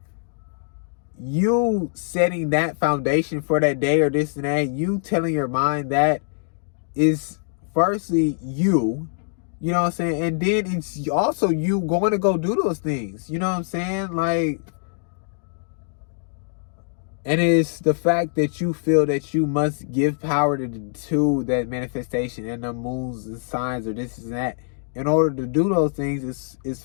you setting that foundation for that day or this and that, you telling your mind that is firstly you know what I'm saying? And then it's also you going to go do those things. You know what I'm saying? Like, and it's the fact that you feel that you must give power to that manifestation and the moons and signs or this and that in order to do those things is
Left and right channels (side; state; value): right; silent; digital silence